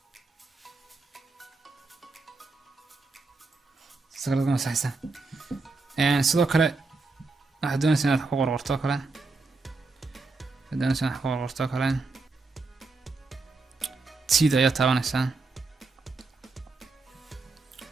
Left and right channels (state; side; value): quieter; left; 3.8 dB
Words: sagaladan saaysa sidoo kale waxaad doonaysaa inaad ku qorqorto kale sida ayaa taabanaysaa